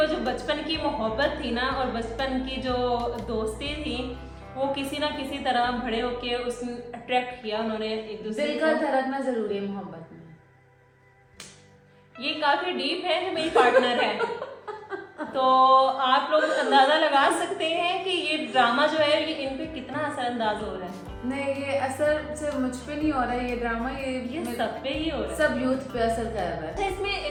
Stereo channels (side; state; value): both; identical; correlation 1.00